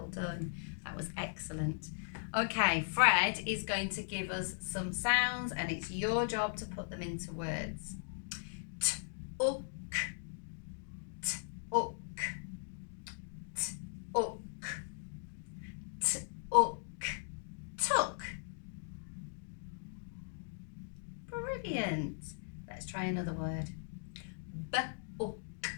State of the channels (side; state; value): right; silent; digital silence